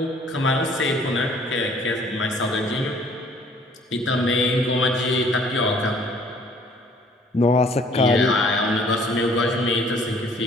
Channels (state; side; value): normal; both; correlation 0.57